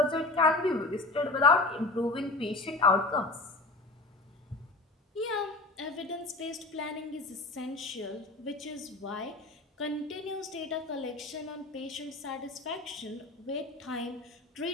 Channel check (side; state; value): right; quieter; 3.1 dB